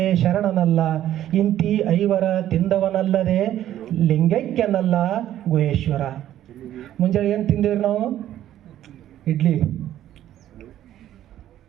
ಶರಣನಲ್ಲ, ಇಂತಿ ಐವರ ತಿಂದವನಲ್ಲದೆ ಲಿಂಗೈಕ್ಯನಲ್ಲ ಗುಹೇಶ್ವರ. ಮುಂಜಾನೆ ಏನು ತಿಂದೇವ್ರಿ ನಾವು? ಇಡ್ಲಿ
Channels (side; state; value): left; quieter; 12.2 dB